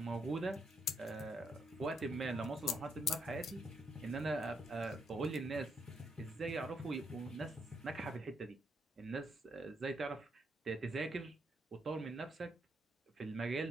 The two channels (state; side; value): normal; both; correlation 0.77